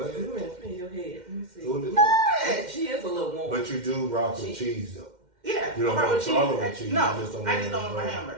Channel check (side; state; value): left; late; 2.1 ms